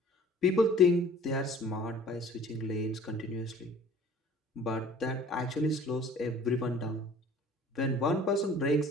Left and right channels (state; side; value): normal; both; correlation 0.50